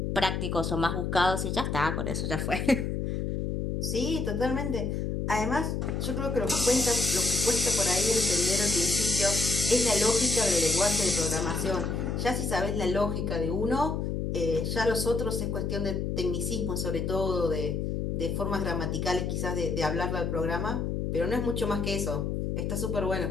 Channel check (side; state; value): left; noise; hum, 1 dB below the sound